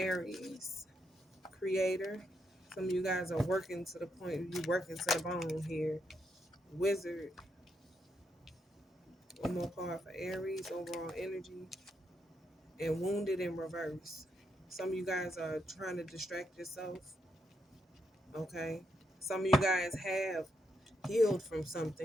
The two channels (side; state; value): both; normal; correlation 0.80